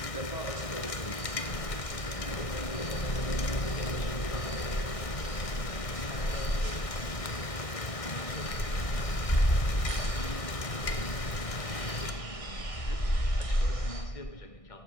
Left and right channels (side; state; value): right; late; 1.6 ms